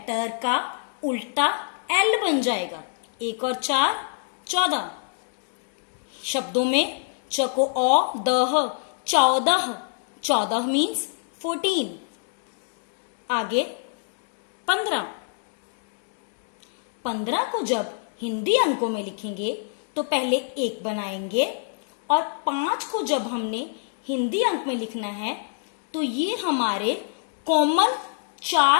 का उल्टा एल बन जाएगा। 1 और 4 14। शब्दों में चको औ दह 14 मीन्स 14। आगे 15 को जब हिंदी अंकों में लिखेंगे तो पहले 1 बनाएंगे और 5 को जब हमने हिंदी अंक में लिखना है तो ये हमारे कॉमन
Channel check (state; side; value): silent; right; digital silence